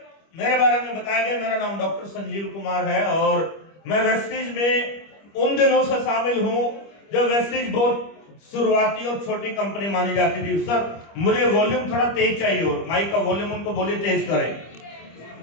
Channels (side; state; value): right; late; 25 ms